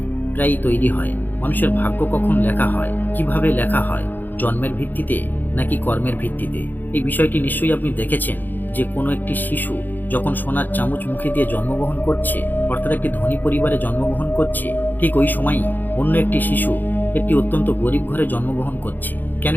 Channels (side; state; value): right; late; 0.088 ms